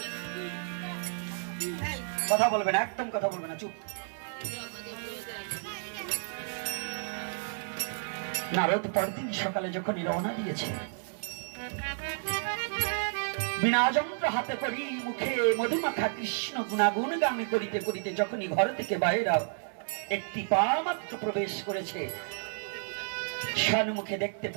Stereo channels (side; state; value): left; silent; 57 dB below the other